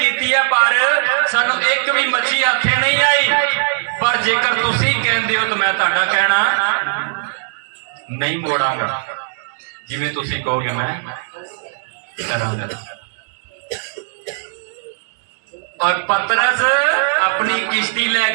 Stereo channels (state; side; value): silent; left; digital silence